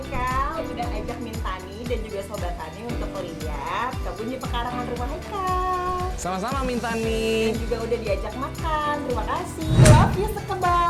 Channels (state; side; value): identical; both; correlation 1.00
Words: udah ajak Mintani dan juga Sobat Tani untuk lihat kebun di pekarangan rumah Haikal. Sama-sama Mintani. Dan juga udah diajak makan. Terima kasih. Love you